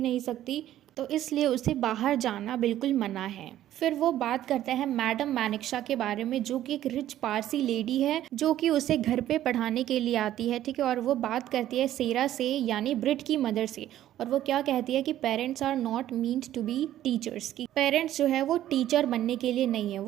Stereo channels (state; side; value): quieter; left; 12.7 dB